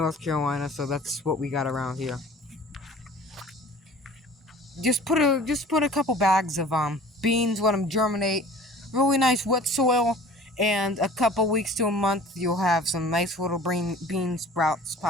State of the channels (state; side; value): normal; both; correlation 0.46